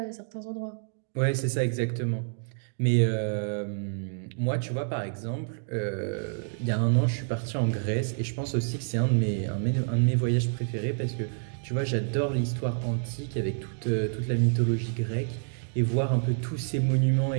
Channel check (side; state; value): left; silent; digital silence